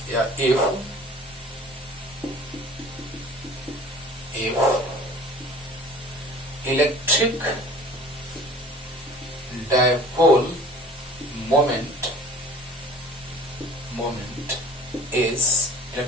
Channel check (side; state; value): both; normal; correlation 0.45